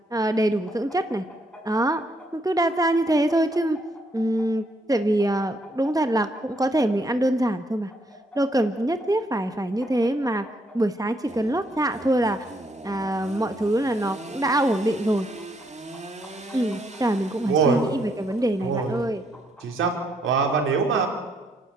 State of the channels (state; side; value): normal; both; correlation 0.73